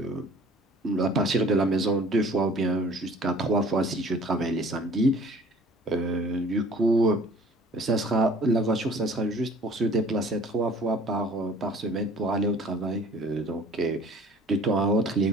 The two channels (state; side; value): normal; both; correlation 0.51